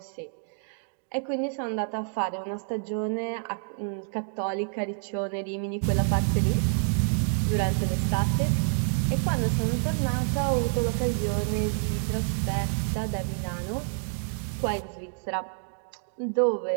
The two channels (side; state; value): left; silent; 59 dB below the other